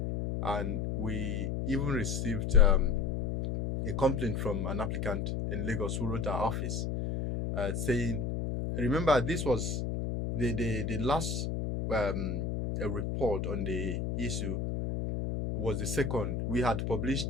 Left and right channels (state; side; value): noise; left; hum, 2 dB below the sound